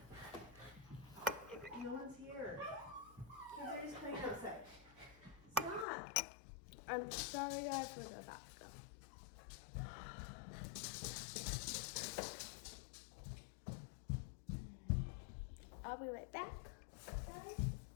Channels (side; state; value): right; drops out; at 5.9 s